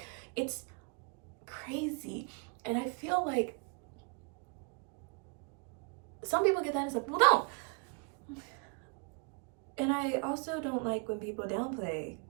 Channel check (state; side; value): quieter; left; 37.3 dB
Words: it's crazy. And I feel like some people get that and some people don't. And I also don't like when people downplay